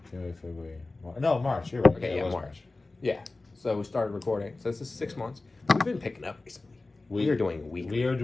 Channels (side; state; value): right; quieter; 3.3 dB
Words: January, February, March. No, March. You're right. Okay, yeah, March. Yeah. So we started recording. So this is 6 months. We've been picking up recently. We are doing weekly. We are